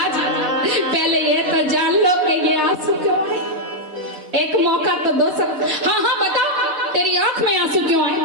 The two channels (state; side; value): late; left; 4.0 ms